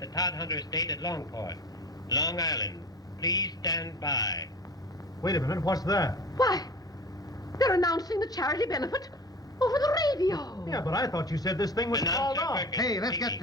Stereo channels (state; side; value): normal; both; correlation 0.38